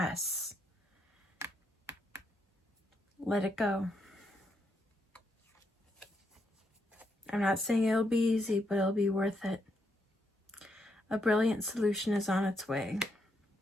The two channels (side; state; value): both; normal; correlation 0.79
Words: let it go. I'm not saying it'll be easy, but it'll be worth it. A brilliant solution is on its way.